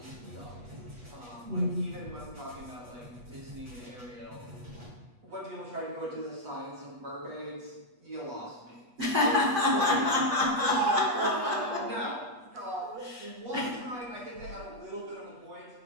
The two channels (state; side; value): late; left; 8.2 ms